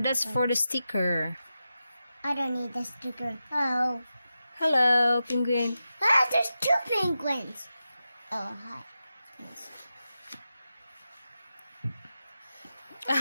that's for the sticker. I don't need the sticker. Oh. Hello, penguin. Ah, there's two penguins. Oh, hi. Yes.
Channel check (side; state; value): both; inverted; correlation -0.91